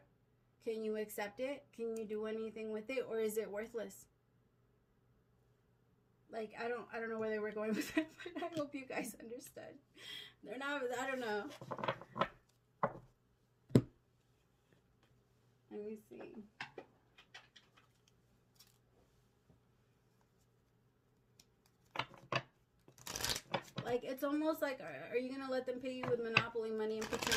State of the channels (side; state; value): both; identical; correlation 1.00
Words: Can you accept it? Can you do anything with it? Or is it worthless? Like, I don't know where they were going with it, but I hope you guys understood. They're not, I don't know. Let me see. Like, it's almost like, are you going to let them pay you with Monopoly money and